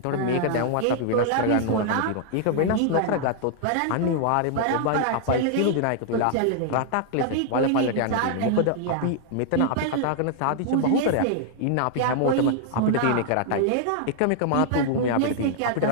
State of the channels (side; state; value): both; different; correlation -0.01